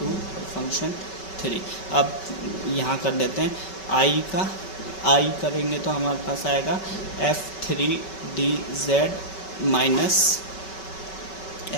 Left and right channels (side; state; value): right; late; 5.3 ms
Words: और फंक्शन 3। अब यहाँ कर देते हैं आई का, आई करेंगे तो हमारे पास आएगा F3 D Z minus